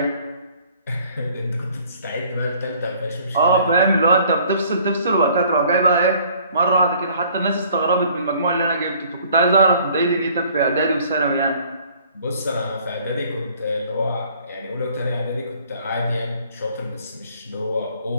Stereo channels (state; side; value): inverted; both; correlation -0.57